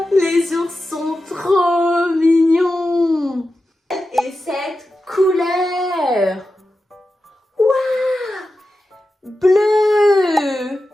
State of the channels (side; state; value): both; normal; correlation 0.92